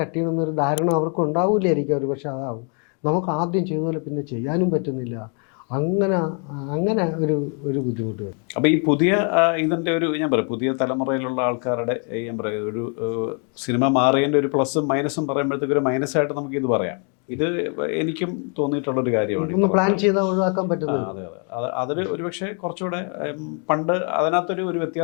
ചെയ്യണമെന്നൊരു ധാരണ അവർക്ക് ഉണ്ടാവില്ലായിരിക്കും, ഒരു പക്ഷെ അതാവും. നമുക്ക് ആദ്യം ചെയ്തതുപോലെ പിന്നെ ചെയ്യാനും പറ്റുന്നില്ല. അങ്ങനെ ഒരു ബുദ്ധിമുട്ട് വരും. അപ്പോൾ ഈ പുതിയ ഇതിൻ്റെ ഞാൻ പറയാം, പുതിയ തലമുറയിലുള്ള ആൾക്കാരുടെ ഞാൻ പറയാം ഒരു സിനിമ മാറിയതിൻ്റെ ഒരു പ്ലസും മൈനസും പറയുമ്പോഴത്തേക്ക് ഒരു മൈനസായിട്ട് നമുക്ക് ഇത് പറയാം. ഇത് എനിക്കും തോന്നിയിട്ടുള്ളൊരു കാര്യമാണ്. പ്ലാൻ ചെയ്താൽ ഒഴിവാക്കാൻ പറ്റുന്നത്. അതെ അതൊരു ഒരുപക്ഷെ കുറച്ചുകൂടെ പണ്ട് അതിനകത്തൊരു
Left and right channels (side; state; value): right; quieter; 39.6 dB